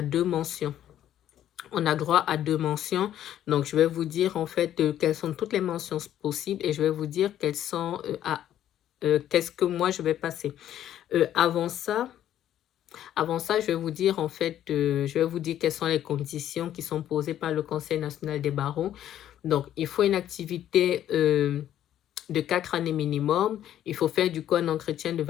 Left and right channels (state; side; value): quieter; right; 11.4 dB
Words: 2 mentions. On a droit à 2 mentions. Donc, je vais vous dire en fait quelles sont toutes les mentions possibles et je vais vous dire quelles sont qu'est-ce que moi je vais passer. Avant ça, je vais vous dire en fait, je vais vous dire quelles sont les conditions qui sont posées par le Conseil national des barreaux. Donc, il faut une activité de 4 années minimum. Il faut faire du coup un entretien de